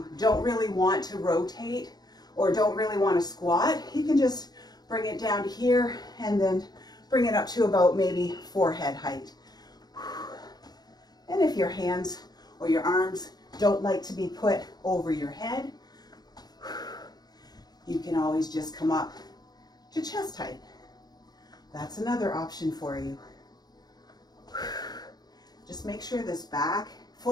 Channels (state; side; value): late; right; 0.19 ms